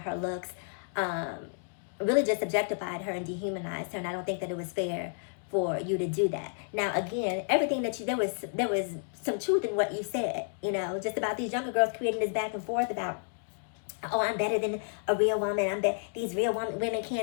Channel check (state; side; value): silent; right; digital silence